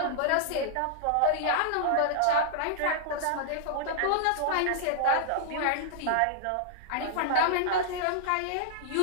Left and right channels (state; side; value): different; both; correlation -0.01